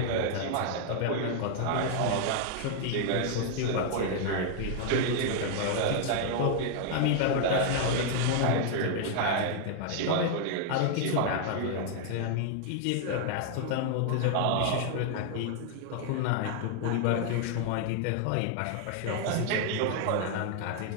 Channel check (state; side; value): different; both; correlation 0.00